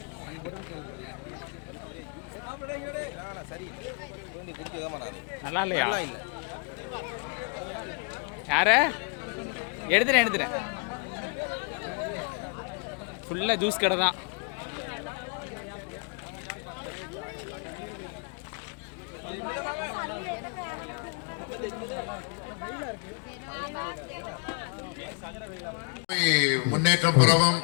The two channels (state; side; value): quieter; right; 35.8 dB